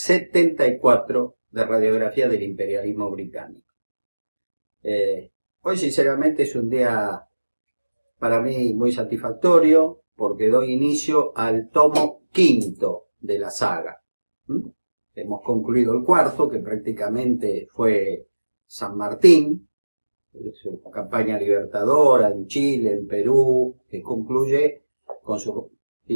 de Radiografía del Imperialismo Británico. Hoy, sinceramente, es un día para mí muy satisfactorio porque doy inicio al tomo quinto de la saga. Hemos concluido el cuarto, que prácticamente fue San Martín, su campaña libertadora en Chile, en Perú, que concluye con su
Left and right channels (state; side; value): inverted; both; correlation -1.00